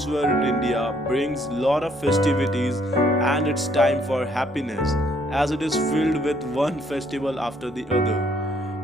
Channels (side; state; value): both; normal; correlation 0.67